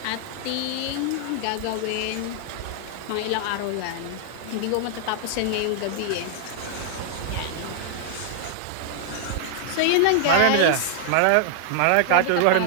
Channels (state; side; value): different; both; correlation -0.01